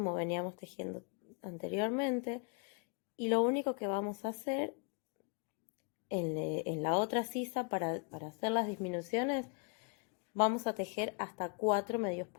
veníamos tejiendo anteriormente. Y lo único que vamos a hacer en la otra sisa para hacer las disminuciones, vamos a tejer hasta 4 medios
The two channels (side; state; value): right; quieter; 35.6 dB